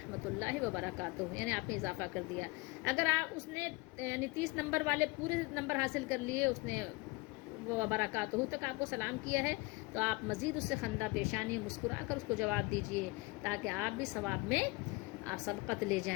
اللہ وبرکاتہ، یعنی آپ نے اضافہ کر دیا. اگر اس نے یعنی 30 نمبر والے پورے نمبر حاصل کر لیے، اس نے وبرکاتہ تک آپ کو سلام کیا ہے، تو آپ مزید اس سے خندہ پیشانی مسکرا کر اس کو جواب دیجئے، تاکہ آپ بھی ثواب میں آپ سبقت لے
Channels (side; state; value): right; quieter; 24.5 dB